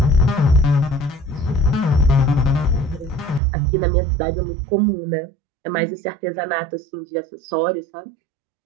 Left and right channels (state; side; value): drops out; left; at 3.4 s